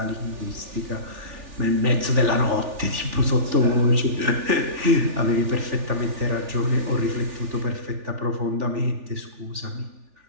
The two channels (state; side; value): late; left; 3.4 ms